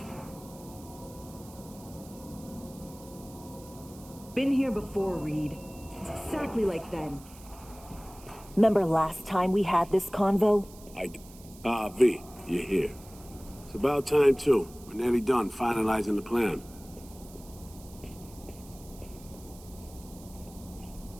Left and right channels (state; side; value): noise; right; hiss, 21 dB below the sound